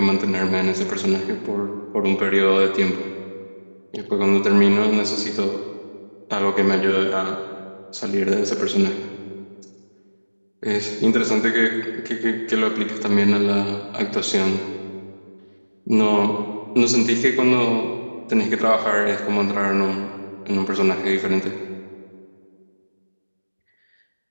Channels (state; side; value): inverted; both; correlation -1.00